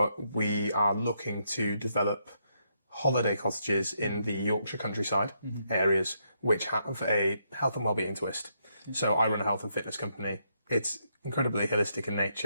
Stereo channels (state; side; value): inverted; both; correlation -0.78